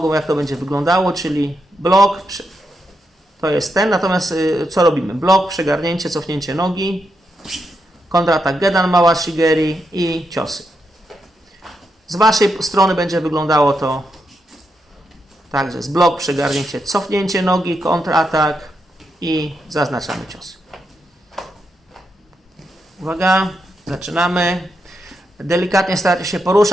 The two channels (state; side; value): normal; both; correlation 0.83